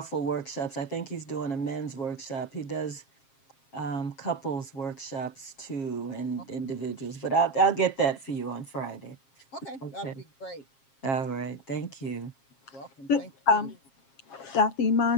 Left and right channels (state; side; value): late; right; 7.4 ms